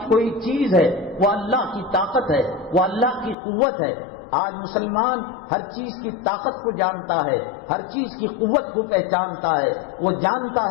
کوئی چیز ہے وہ اللہ کی طاقت ہے، وہ اللہ کی قوت ہے۔ آج مسلمان ہر چیز کی طاقت کو جانتا ہے، ہر چیز کی قوت کو پہچانتا ہے، وہ جانتا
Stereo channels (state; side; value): drops out; right; at 3.4 s